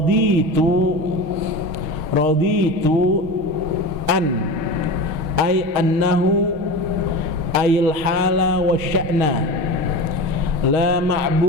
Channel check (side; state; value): left; late; 6.4 ms